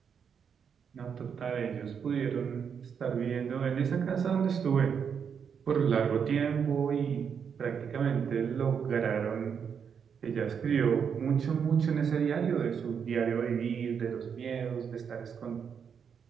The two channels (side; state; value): left; quieter; 7.0 dB